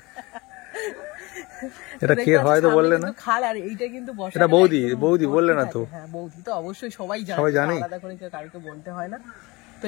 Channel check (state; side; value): quieter; right; 23.8 dB